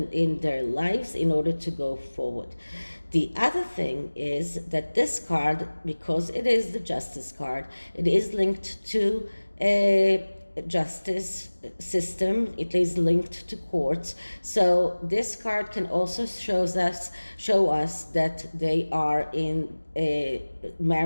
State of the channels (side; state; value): both; inverted; correlation -1.00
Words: in their lives in order to go forward. The other thing is that this card, because it is the justice card, it is linked to a justice system, it is linked to courts. So this card can also show us that they are in